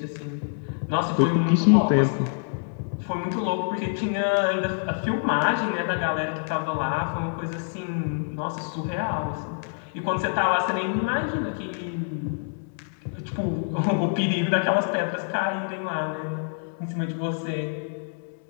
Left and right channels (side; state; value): right; silent; 61 dB below the other